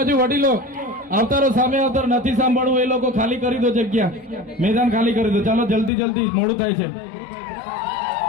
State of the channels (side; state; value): right; drops out; at 5.9 s